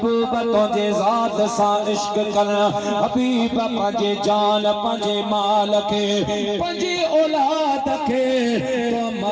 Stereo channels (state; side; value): identical; both; correlation 1.00